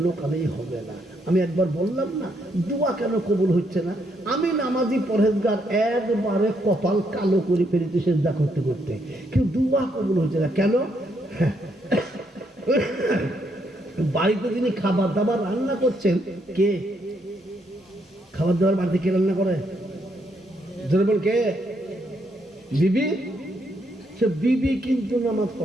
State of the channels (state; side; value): normal; both; correlation 0.75